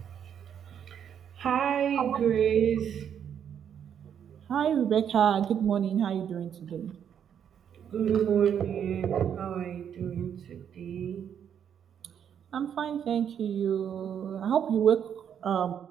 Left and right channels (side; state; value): left; quieter; 8.6 dB